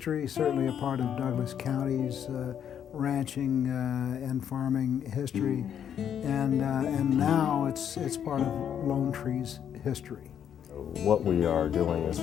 certainly a part of Douglas County's ranching and farming history, and now it's part of Lone Tree's history. What we are doing is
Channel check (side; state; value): right; quieter; 8.9 dB